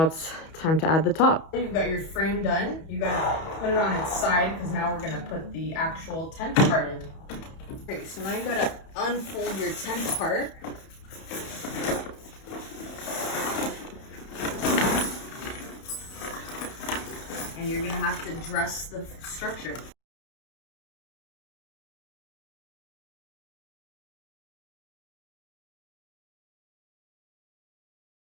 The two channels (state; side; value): late; right; 31 ms